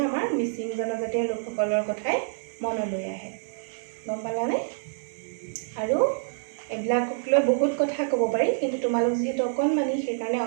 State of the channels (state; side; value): silent; left; digital silence